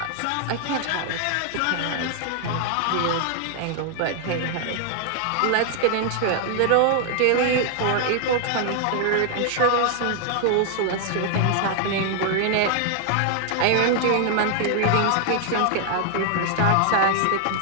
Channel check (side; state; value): both; different; correlation 0.00